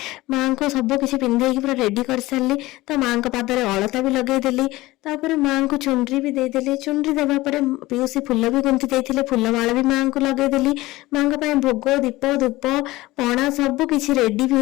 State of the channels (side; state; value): right; quieter; 18.9 dB